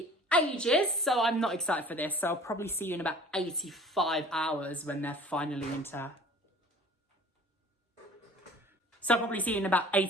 ages, so I'm not excited for this. So I'll probably see you in about 85 hours when they're finally into... So I'll probably see you in about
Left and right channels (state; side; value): normal; both; correlation 0.46